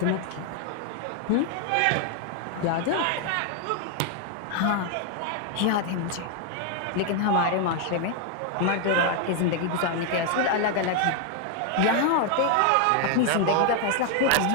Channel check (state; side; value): different; both; correlation 0.00